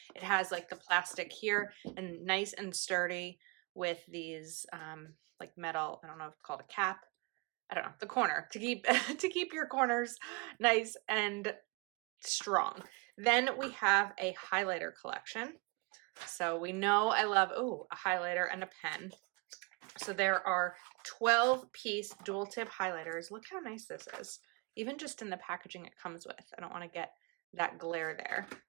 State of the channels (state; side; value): quieter; left; 28.9 dB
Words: it has like the plastic here and nice and sturdy with these like metal, I don't know if it's called a cap. I don't know, the corner to keep to keep your corners nice and strong. Then we have a highlighter collection. So we know I love a highlighter and a pen. So there are 12-piece dual tip highlighters. Look how nice this is. Even just in the packaging it comes with. I don't want to get that glare there.